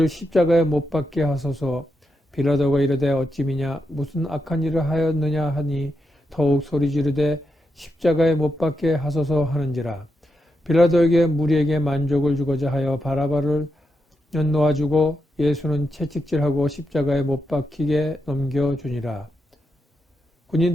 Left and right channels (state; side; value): normal; both; correlation 0.85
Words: 십자가에 못 박게 하소서. 빌라도가 이르되 어찌미냐 무슨 악한 일을 하였느냐 하니 더욱 소리 지르되 십자가에 못 박게 하소서 하는지라. 빌라도에게 무리에게 만족을 주고자 하여 바라바를 놓아주고 예수는 채찍질하고 십자가에 못 박히게 넘겨주니라.